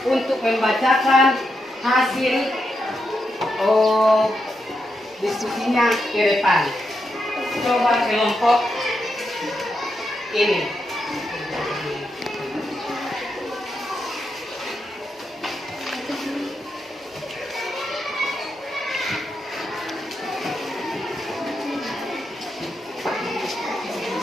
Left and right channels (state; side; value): normal; both; correlation 0.84